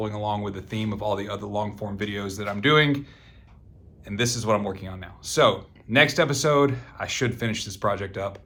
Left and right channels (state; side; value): identical; both; correlation 1.00